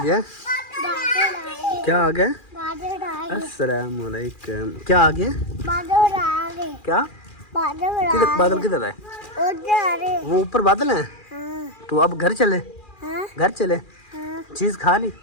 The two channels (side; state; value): right; late; 2.4 ms